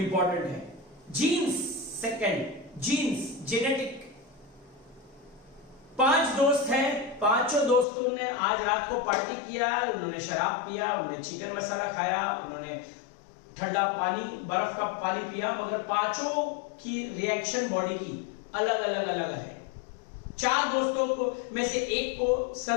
है। Jeans second, jeans genetic. 5 दोस्त हैं, पांचों दोस्तों ने आज रात को पार्टी किया, उन्होंने शराब पिया, उन्होंने चिकन मसाला खाया, उन्होंने ठंडा पानी, बर्फ का पानी पिया, मगर पांचों की रिएक्शन बॉडी की अलग अलग अलग है। 4 दोस्तों को में से एक को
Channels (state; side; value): drops out; right; at 7.9 s